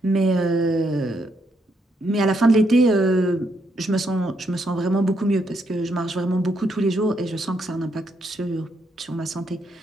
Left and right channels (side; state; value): both; normal; correlation 0.77